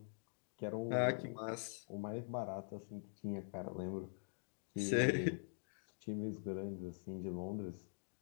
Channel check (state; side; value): silent; right; digital silence